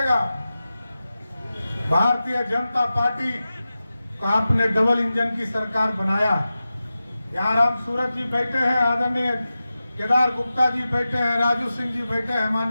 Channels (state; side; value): inverted; both; correlation -0.94